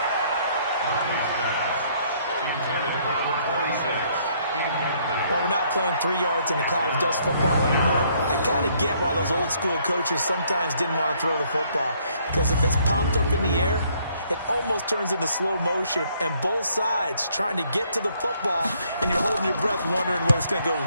Well, we're not playing 3 yards in a cloud of dust football anymore. I kind of get why those old school coaches sometimes didn't want to throw the football. Because if it's popped up in the air, it almost turns into slow motion, and both sides trying to get to the football, and you're holding your breath wondering whether it's going to go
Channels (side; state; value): both; inverted; correlation -0.66